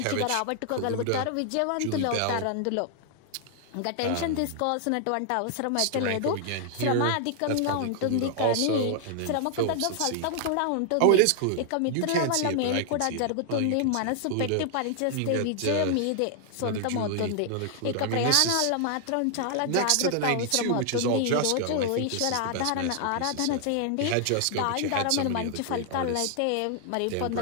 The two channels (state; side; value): different; both; correlation 0.00